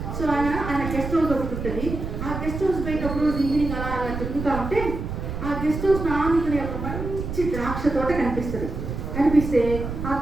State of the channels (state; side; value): noise; right; rumble, 5 dB below the sound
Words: సో ఆయన గెస్ట్ హౌస్ ఒకటి ఉంటుంది. ఆ గెస్ట్ హౌస్ బయట ఒక రోజు ఈవినింగ్ అలా తిరుగుతూ ఉంటే ఆ గెస్ట్ హౌస్ నానుకునే ఒక మంచి ద్రాక్ష తోట కనిపిస్తుంది. కనిపిస్తే ఆ